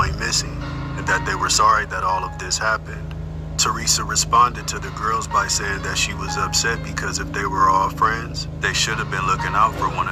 missing and that they were sorry that all of this happened. Teresa responded to the girls by saying that she was upset because if they were all friends, they should have been looking out for one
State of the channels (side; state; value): both; identical; correlation 1.00